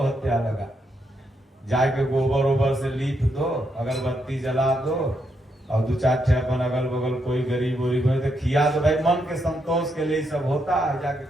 लगा। जाके गोबर ओबर से लीप दो, अगरबत्ती जला दो, और 2-4 ठे अपन अगल बगल कोई गरीब वरीब है तो खिया दो। भाई मन के संतोष के लिए सब होता है, जाके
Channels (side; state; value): both; normal; correlation 0.79